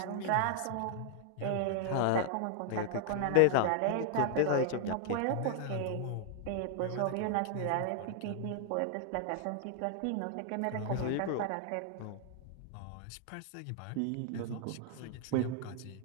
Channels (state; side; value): different; both; correlation 0.00